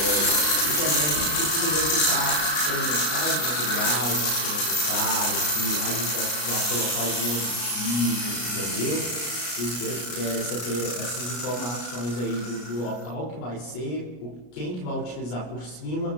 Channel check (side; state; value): right; late; 33 ms